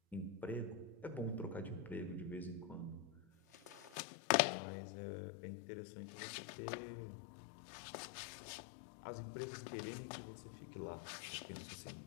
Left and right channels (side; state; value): right; drops out; at 4.0 s